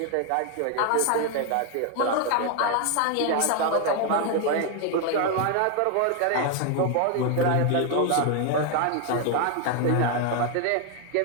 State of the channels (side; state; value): both; different; correlation 0.01